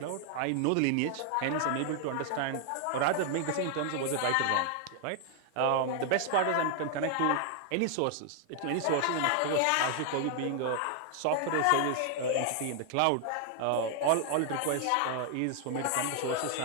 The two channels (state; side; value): different; both; correlation 0.00